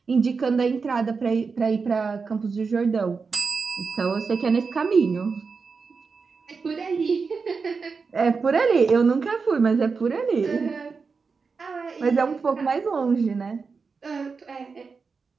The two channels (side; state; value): left; quieter; 5.0 dB